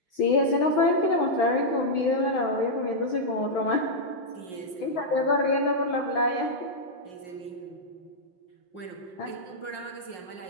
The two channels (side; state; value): right; late; 5.5 ms